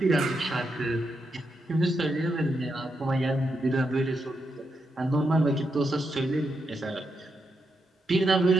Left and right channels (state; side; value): normal; both; correlation 0.83